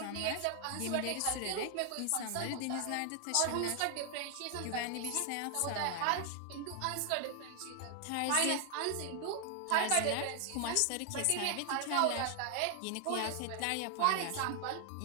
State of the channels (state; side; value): different; both; correlation 0.00